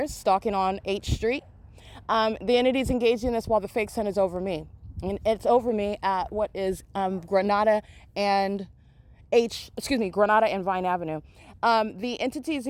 stalking on H Street. The entity's engaged in this while the fake sun is over me. And it's over me at what is Granada and Granada and Vine Avenue. The entity is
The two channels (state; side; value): identical; both; correlation 1.00